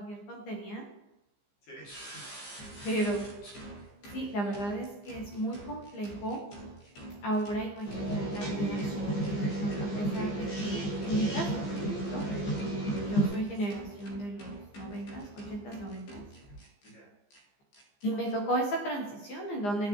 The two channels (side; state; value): right; late; 15 ms